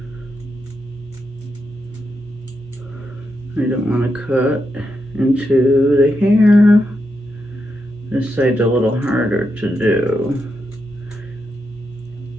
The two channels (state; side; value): normal; both; correlation 0.84